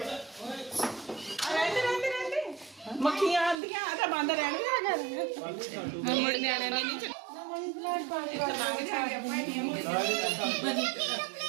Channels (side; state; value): left; drops out; at 3.6 s